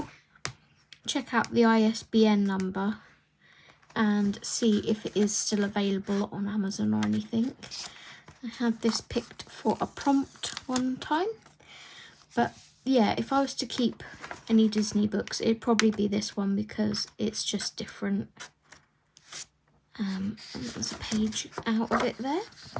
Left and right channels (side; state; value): both; identical; correlation 1.00